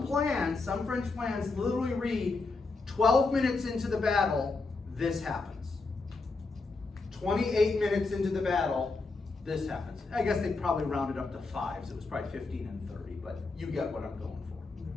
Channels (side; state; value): right; quieter; 3.9 dB